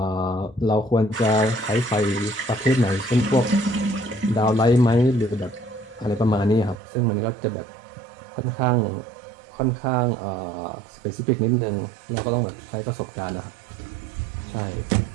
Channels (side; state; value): left; drops out; at 6.8 s